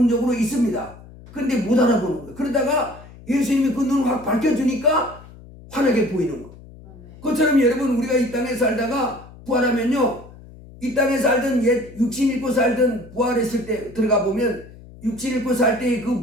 있습니다. 그런데 못 알아보는 거예요. 그러다가 예수님이 그 눈을 확 밝혀주니까 환하게 보이는 거예요. 그것처럼 여러분 우리가 이 땅에 살다가 부활하면요, 이 땅에 살던 육신 입고 살던 부활했을 때 들어가 보면 육신 입고 살 때의 그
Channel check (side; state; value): left; noise; hum, 20 dB below the sound